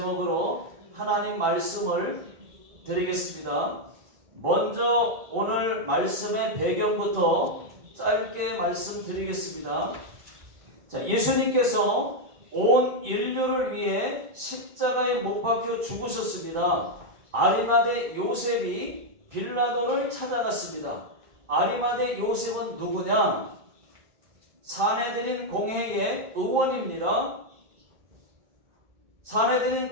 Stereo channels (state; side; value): late; left; 1.9 ms